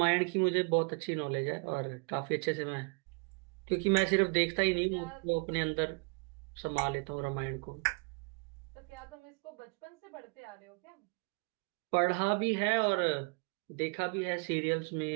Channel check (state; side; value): quieter; left; 34.6 dB